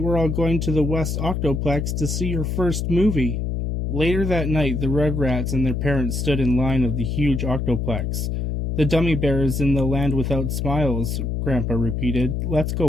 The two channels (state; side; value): noise; left; hum, 1 dB below the sound